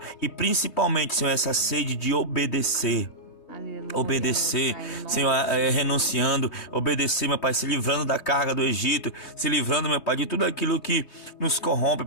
e principalmente, Senhor, essa sede de obedecer. Aleluia, obedecer, Pai, Senhor, renunciando, obedecer, meu Pai, se livrando da carga do Egito, se livrando, meu Pai, de tudo aquilo que nos corrompe,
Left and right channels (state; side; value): late; right; 3.2 ms